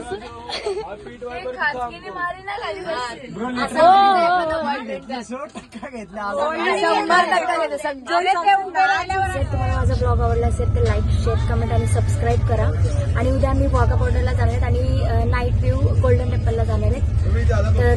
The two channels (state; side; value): identical; both; correlation 1.00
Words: तुम्हाला माझा ब्लॉग आवडला असेल तर लाईक शेअर कमेंट आणि सबस्क्राईब करा. आणि उद्या आम्ही वाघा बॉर्डरला जाणार आहेत आणि नाईट व्ह्यू गोल्डन टेम्पलला जाणार आहेत